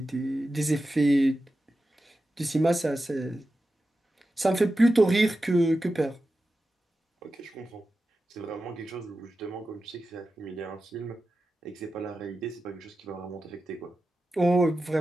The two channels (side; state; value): both; normal; correlation 0.92